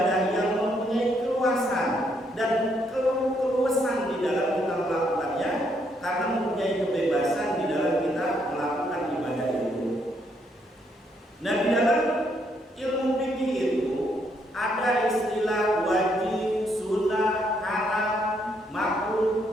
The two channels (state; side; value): normal; both; correlation 0.73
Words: yang mempunyai keluasan dan keluasan di dalam kita melakukannya, karena mempunyai kebebasan di dalam kita melakukan ibadah itu. Nah, di dalam ilmu fikih itu ada istilah wajib, sunnah, haram,